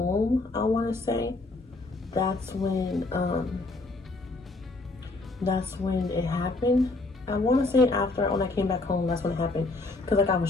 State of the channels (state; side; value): quieter; right; 3.2 dB